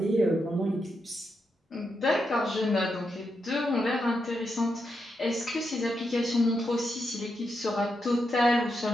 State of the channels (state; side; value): normal; both; correlation 0.84